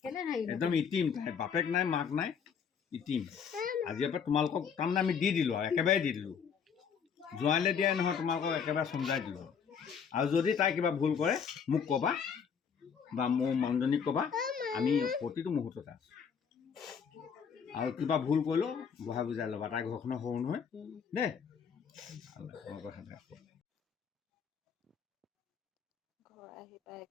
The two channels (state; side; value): quieter; right; 6.8 dB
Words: একদম ইটিম বাপেক নাই মাক নাই ইটিম আজিৰ পৰা তোমালোকক তাৰমানে আমি দি দিলোঁ আৰু একেবাৰে দি দিলোঁ জোৱাইলৈ দিয়াই নহয় তোমালোকক একেবাৰে চমজাই দিলোঁ আৰু যদি তাই কিবা ভুল কৰে মোক ক'বা বা মোৰ মানুহজনীক ক'বা আমি প্ৰতিটো মুহূৰ্ততে আছোঁ আৰু কিবা ভুল কৰিলেও বহাই বুজাই ল'বা তাই ঘৰখনৰ সৰু নহয় দেই ঘৰ আহি পাই